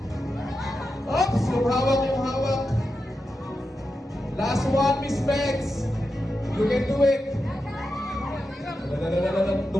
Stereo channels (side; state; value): both; normal; correlation 0.89